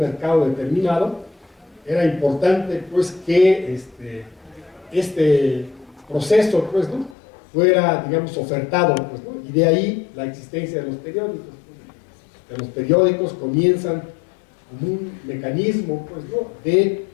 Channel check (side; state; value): right; drops out; at 7.2 s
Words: determinado, era importante, pues, que este proceso, pues, ¿no? fuera, digamos, ofertado, pues, ¿no? Y de ahí la existencia de los periódicos. Los periódicos comienzan como un mecanismo, pues, ¿no?, de,